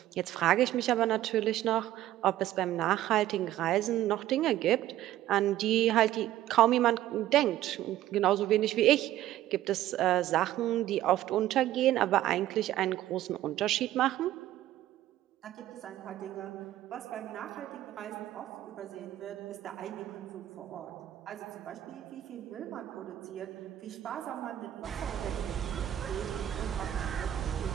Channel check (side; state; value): left; quieter; 13.5 dB